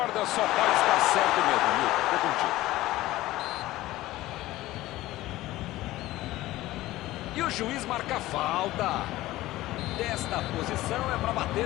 só pode estar certo mesmo, Milton. Tô contigo. E o juiz marca falta. Desta posição é para bater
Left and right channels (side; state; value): right; quieter; 16.8 dB